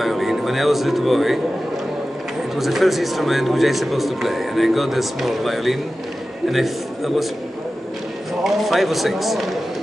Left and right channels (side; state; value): both; normal; correlation 0.94